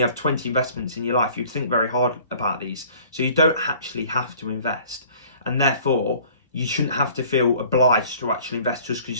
20 investments in your life, you'd think very hard about these. So you don't actually have to invest, and therefore you shouldn't have to feel obliged to actually invest just because you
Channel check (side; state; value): both; inverted; correlation -0.51